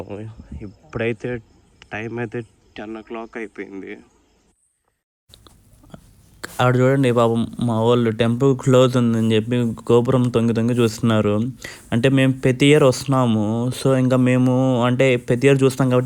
ఇప్పుడైతే టైం అయితే 10 o'clock అయిపోయింది. ఆడ చూడండి పాపం మా వాళ్ళు టెంపుల్ క్లోజ్ ఉందని చెప్పి గోపురం తొంగి చూస్తున్నారు. అంటే మేము ప్రతి ఇయర్ వస్తున్నాము, సో ఇంకా మేము అంటే ప్రతి ఇయర్ చూస్తాం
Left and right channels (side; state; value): both; identical; correlation 1.00